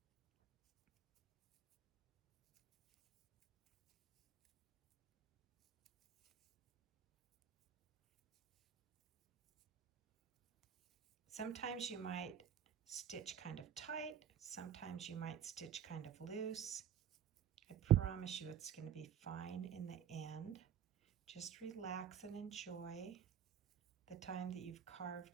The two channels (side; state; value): left; quieter; 9.3 dB